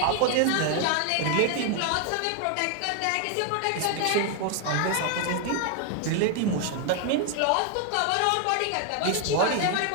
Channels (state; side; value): different; both; correlation 0.00